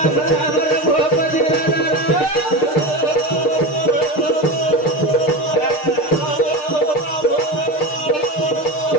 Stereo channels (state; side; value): late; right; 6.6 ms